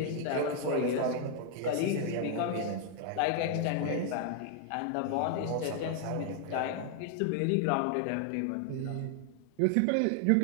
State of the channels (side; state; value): both; different; correlation 0.00